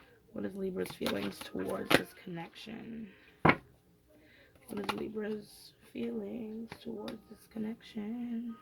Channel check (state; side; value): identical; both; correlation 1.00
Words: What is Libra's feelings towards this connection? What is Libra's feelings towards this connection?